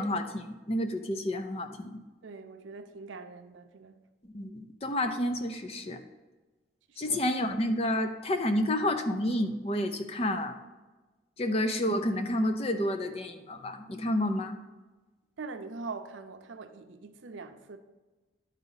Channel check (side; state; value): both; normal; correlation 0.50